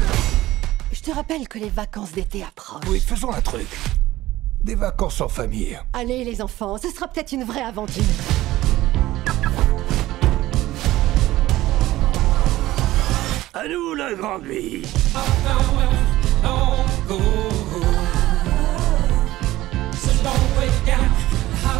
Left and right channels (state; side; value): quieter; left; 16.3 dB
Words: Je te rappelle que les vacances d'été approchent. Oui, faisons un truc. Des vacances en famille. Allez, les enfants, ce sera peut-être une vraie aventure. À nous, la grande vie.